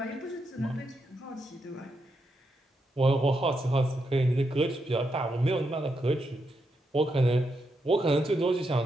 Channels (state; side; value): normal; both; correlation 0.83